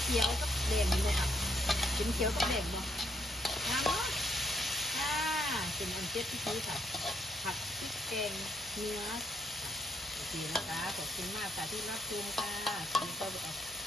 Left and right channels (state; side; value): normal; both; correlation 0.75